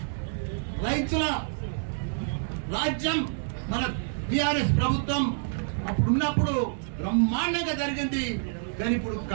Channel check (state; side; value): silent; left; digital silence